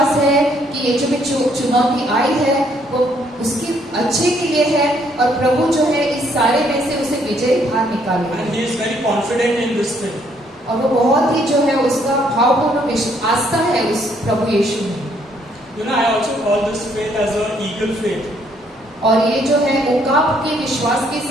है कि ये जो भी चुनौती आई है वो उसकी अच्छे के लिए है और प्रभु जो है इस सारे में से उसे विजय बाहर निकालेगा। And he is very confident in this thing. और वो बहुत ही जो है उसका भावपूर्ण आस्था है उस प्रभु यीशु में। You know, I also call this faith as an eagle faith. और ये जो है उकाब के विश्वास के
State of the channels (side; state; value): both; normal; correlation 0.68